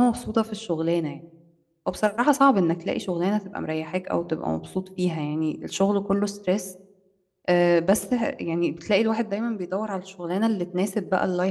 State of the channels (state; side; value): identical; both; correlation 1.00